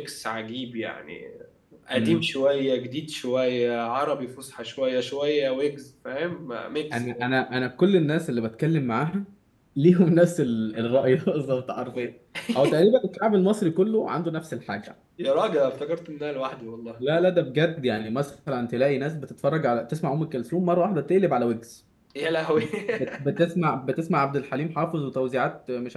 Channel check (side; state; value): both; identical; correlation 1.00